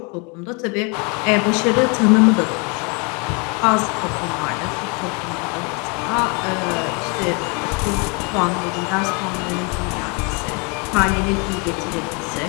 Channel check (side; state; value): right; quieter; 32.3 dB